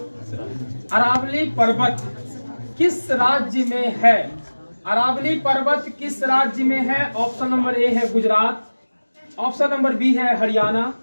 पर्वत किस राज्य में है? अरावली पर्वत किस राज्य में है? ऑप्शन नंबर ए है गुजरात, ऑप्शन नंबर बी है हरियाणा,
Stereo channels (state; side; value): inverted; both; correlation -1.00